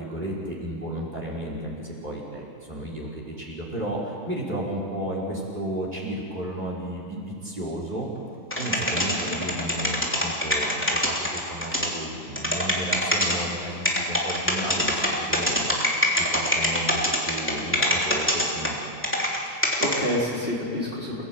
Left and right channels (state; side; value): normal; both; correlation 0.03